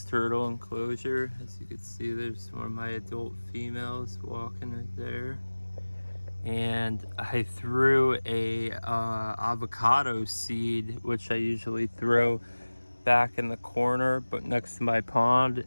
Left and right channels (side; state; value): both; inverted; correlation -1.00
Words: turtle enclosure. As you can see, there's one of my adult females walking right there. And I threw a avocado seed, which I usually throw back in the corner but next to my pond,